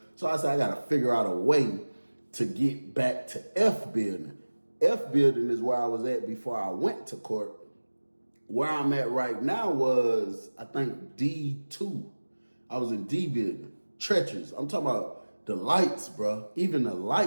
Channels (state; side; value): inverted; both; correlation -1.00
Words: So I said, I got to figure out a way to get back to F building. F building is where I was at before I went to court. Where I'm at right now was, I think, D2. I was in D building. Treacherous. I'm talking about the lights, bro. Even the